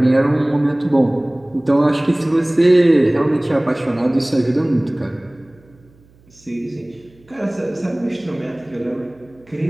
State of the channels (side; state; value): right; noise; hum, 30 dB below the sound